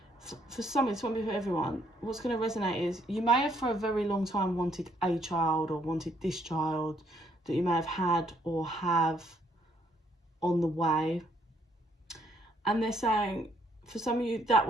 For some, it's won't be for everyone. What's going to resonate is you may have for a very long time wanted a child or wanted this child that you may have had or have on the way. And they're saying, for some of you, that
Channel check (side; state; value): both; normal; correlation 0.69